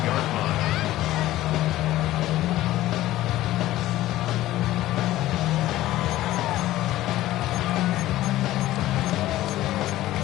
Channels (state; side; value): quieter; right; 15.3 dB